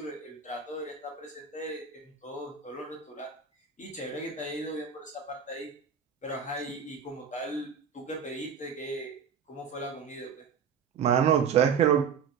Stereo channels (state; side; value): quieter; left; 6.9 dB